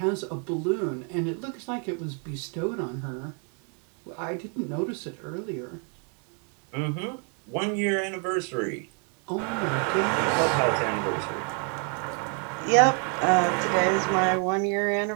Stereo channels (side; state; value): left; quieter; 39.2 dB